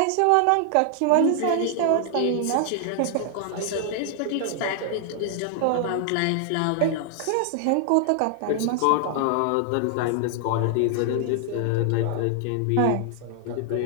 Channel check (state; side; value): different; both; correlation 0.00